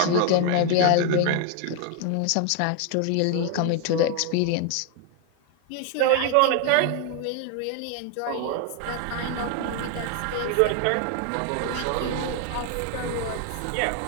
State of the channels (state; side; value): different; both; correlation 0.01